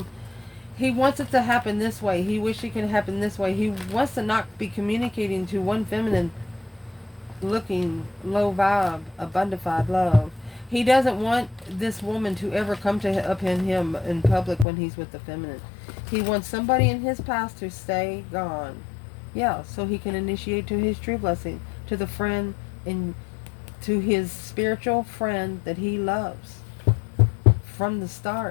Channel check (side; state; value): right; drops out; at 14.7 s